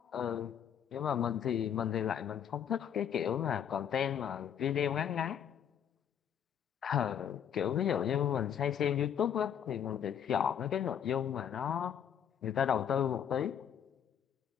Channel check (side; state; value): right; quieter; 8.8 dB